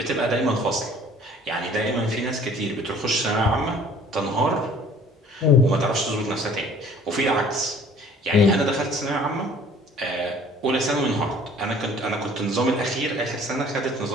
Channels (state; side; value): normal; both; correlation 0.52